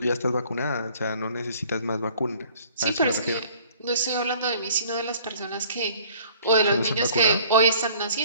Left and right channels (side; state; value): both; inverted; correlation -0.54